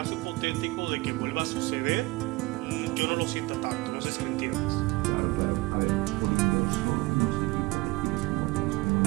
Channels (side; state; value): left; quieter; 22.8 dB